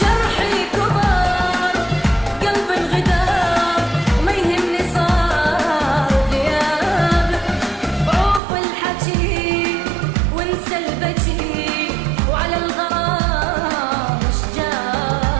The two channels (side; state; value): left; drops out; at 8.4 s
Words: كبر قلبي انغدار، ما يهمني صار غيابك، عوف الحكي وانسى البكي، وعلى الغرام مش